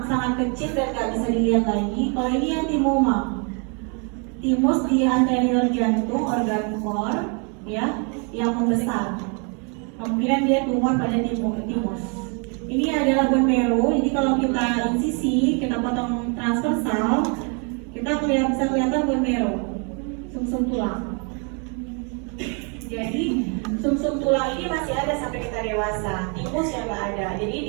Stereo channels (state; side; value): quieter; left; 36.6 dB